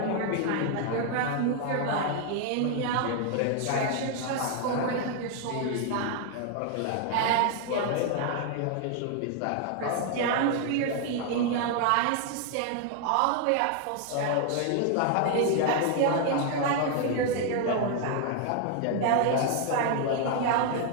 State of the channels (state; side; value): different; both; correlation 0.00